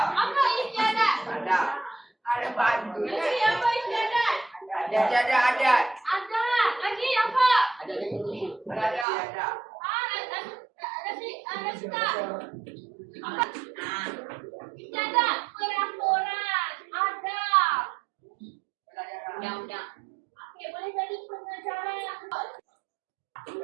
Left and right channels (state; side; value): drops out; left; at 9.1 s